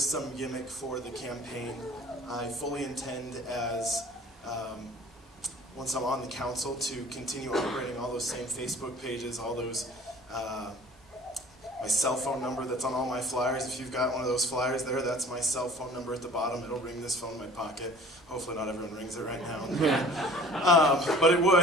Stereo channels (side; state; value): both; normal; correlation 0.47